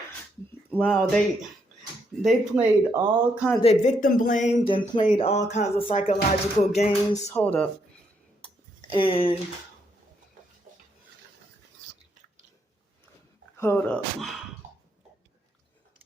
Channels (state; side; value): normal; both; correlation 0.76